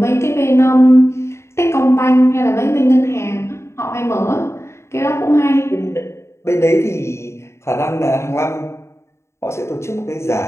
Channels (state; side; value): late; right; 0.13 ms